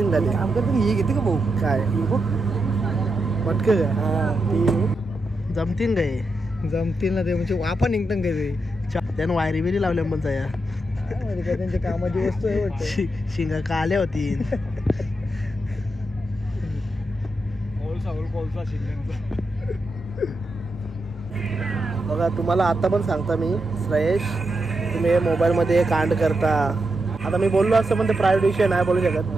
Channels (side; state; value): both; normal; correlation 0.85